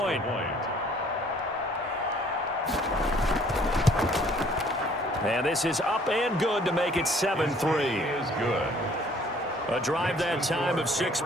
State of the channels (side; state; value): both; normal; correlation 0.58